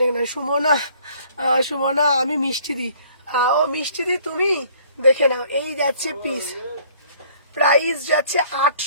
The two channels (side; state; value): both; inverted; correlation -0.57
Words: না, সুমনা, সুমনা আমি মিষ্টি দি, ও মিষ্টি দি তুমি, দেখে নাও। এই যাচ্ছে পিস, প্রাইস যাচ্ছে